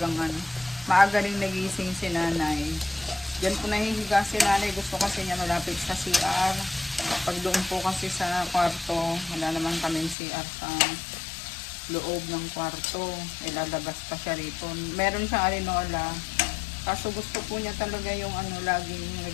maaga rin nagising si nanay. Diyan po nahihiga si nanay. Gusto kasi niya malapit sa CR. Pag doon po kasi sa kwarto, wala naman kaming CR sa loob ng kwarto. Ilalabas pa siya rito. Meron siyang arenola. Kaso gusto po niya talaga yung laging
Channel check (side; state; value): right; drops out; at 10.2 s